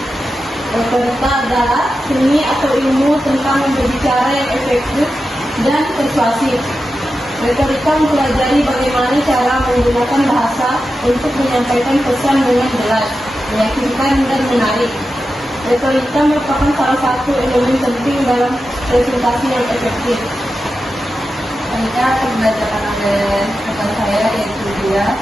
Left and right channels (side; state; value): both; normal; correlation 0.91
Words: Retorika adalah seni atau ilmu tentang berbicara yang efektif dan persuasif. Retorika mempelajari bagaimana cara menggunakan bahasa untuk menyampaikan pesan dengan jelas, meyakinkan, dan menarik. Retorika merupakan salah satu elemen penting dalam presentasi yang efektif. Selanjutnya akan dibacakan oleh rekan saya yaitu dia.